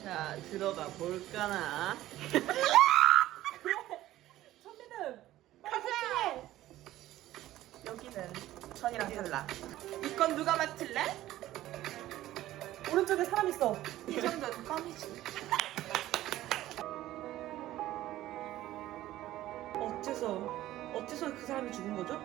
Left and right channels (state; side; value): quieter; left; 14.8 dB